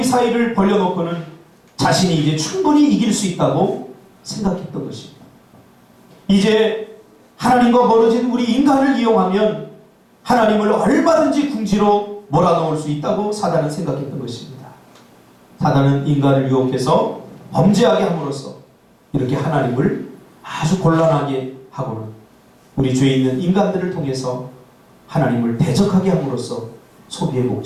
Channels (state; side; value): identical; both; correlation 1.00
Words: 사이를 벌려놓고는 자신이 이제 충분히 이길 수 있다고 생각했던 것입니다. 이제 하나님과 멀어진 우리 인간을 이용하면 하나님을 얼마든지 궁지로 몰아넣을 수 있다고 사단은 생각했던 것입니다. 사단은 인간을 유혹해서 범죄하게 함으로써 이렇게 하나님을 아주 곤란하게 하고는 우리 죄 있는 인간들을 통해서 하나님을 대적하게 함으로써 소비의